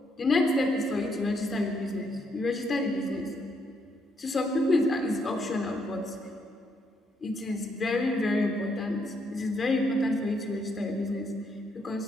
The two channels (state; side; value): normal; both; correlation 0.74